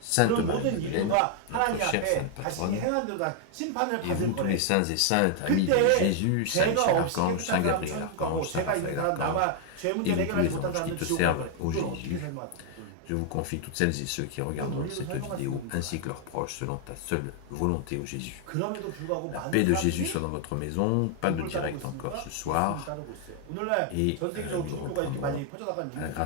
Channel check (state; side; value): different; both; correlation 0.00